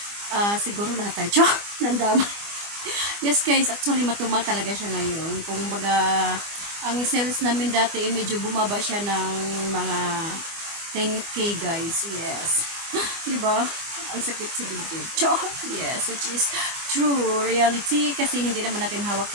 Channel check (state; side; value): late; left; 24 ms